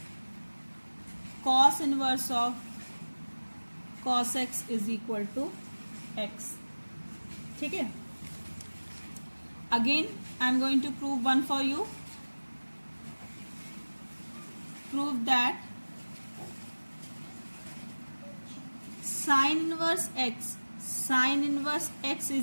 cos inverse of cos x is equal to x। ठीक है, again I am going to prove one for you. Prove that sin inverse x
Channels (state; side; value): inverted; both; correlation -1.00